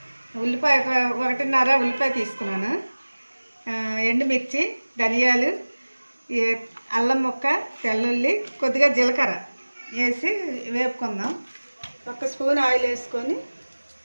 ఉల్లిపాయ 1.5 ఉల్లిపాయ తీసుకున్నాను, ఎండుమిర్చి, ధనియాలు, అల్లం ముక్క, తెల్లుల్లి, కొద్దిగా జీలకర్ర వేసి వేపుకుందాం. 1 స్పూన్ ఆయిల్ వేసుకొని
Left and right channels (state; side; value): inverted; both; correlation -1.00